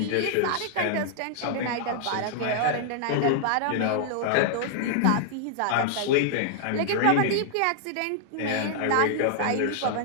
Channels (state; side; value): different; both; correlation -0.01